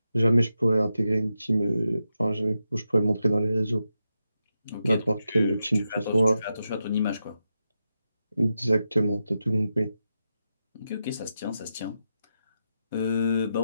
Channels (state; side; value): inverted; both; correlation -0.87